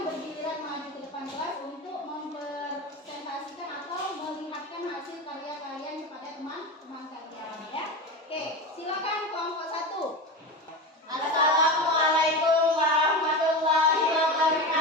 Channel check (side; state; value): both; normal; correlation 0.24